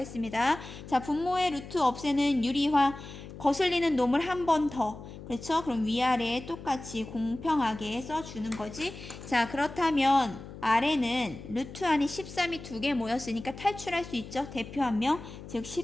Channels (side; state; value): left; noise; hum, 13 dB below the sound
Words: 자, 분모의 루트 없애는 유리화, 거슬리는 놈을 한 번 더. 그렇죠? 그럼 위아래에 똑같이 공평하게 써주는 거지. 자, 그렇다면 아래는 루트 안에 13이 2개 모였으니까 탈출할 수 있죠. 대표 한 명, 즉